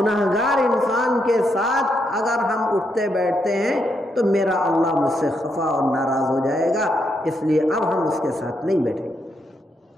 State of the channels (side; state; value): both; normal; correlation 0.79